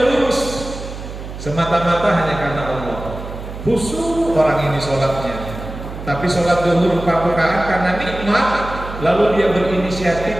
lurus, semata-mata hanya karena Allah. Khusyuk orang ini sholatnya, tapi sholat zuhur 4 rakaat karena nikmat, lalu dia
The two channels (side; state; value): right; noise; hum, 10 dB below the sound